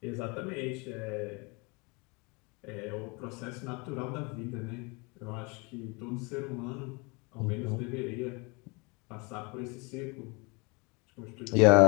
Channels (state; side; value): quieter; right; 29.1 dB